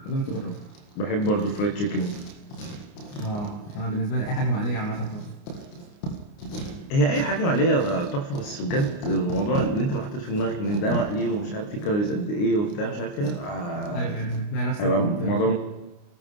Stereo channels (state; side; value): late; right; 29 ms